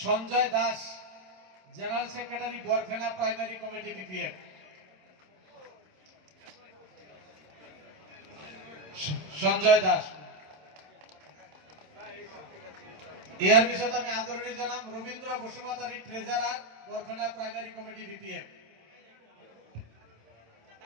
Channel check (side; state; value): left; late; 27 ms